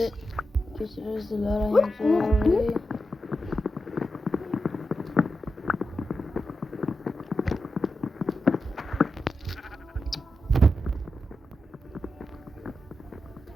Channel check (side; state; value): both; normal; correlation 0.89